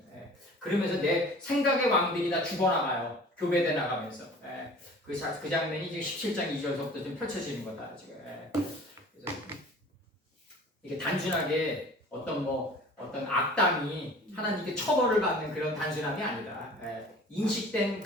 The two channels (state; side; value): normal; both; correlation 0.45